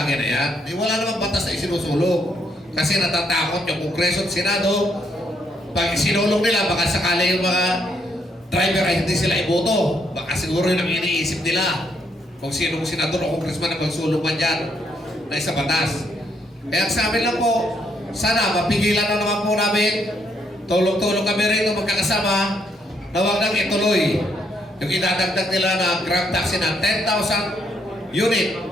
na yan. Wala namang batas na isinusulong. Kasi natatakot yung Kongreso at Senado. Pag isinulong nila, baka sakali yung mga driver ay hindi sila iboto. Baka siguro yun ang iniisip nila. Kung sinong senador o congressman na magsulong man dyan na isa batas. Kaya sa amin lang po, sana mapigilan na naman po namin. Tulong-tulong kami rin magkakasama na huwag nang ituloy yung idadagdag nila na Grab taxi na 10,000 unit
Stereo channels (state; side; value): normal; both; correlation 0.73